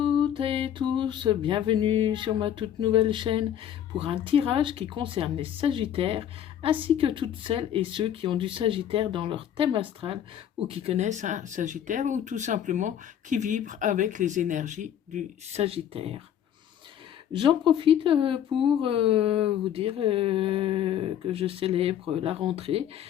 et tous, bienvenue sur ma toute nouvelle chaîne pour un tirage qui concerne les Sagittaires ainsi que toutes celles et ceux qui ont du Sagittaire dans leur thème astral ou qui connaissent un Sagittaire ou tout simplement qui vibrent avec les énergies du Sagittaire. J'en profite pour vous dire que je célèbre la rentrée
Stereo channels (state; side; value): quieter; right; 10.0 dB